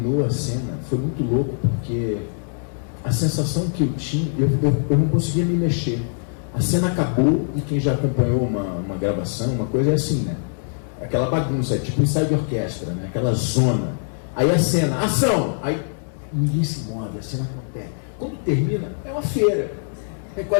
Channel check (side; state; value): right; silent; digital silence